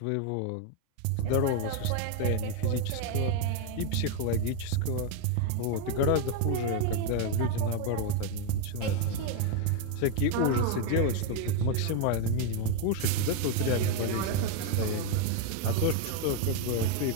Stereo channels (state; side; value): different; both; correlation 0.01